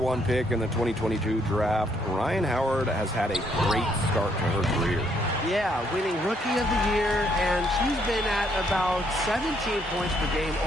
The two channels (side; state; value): both; normal; correlation 0.70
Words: pick in the 2022 draft, Ryan Howard has had a great start to her career. Yeah, winning Rookie of the Year, and she's been at about 17 points per game